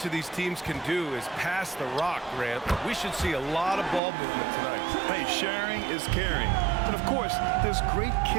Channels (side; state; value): left; drops out; at 4.0 s